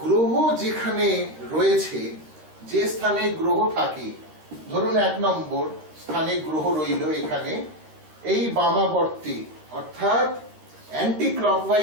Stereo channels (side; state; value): left; late; 13 ms